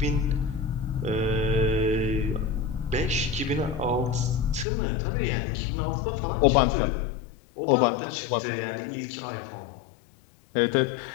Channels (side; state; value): right; drops out; at 4.7 s